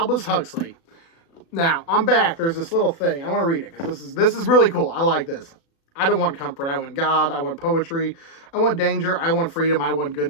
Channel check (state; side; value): late; right; 36 ms